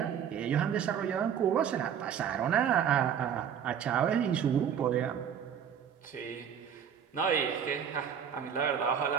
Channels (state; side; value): quieter; left; 8.2 dB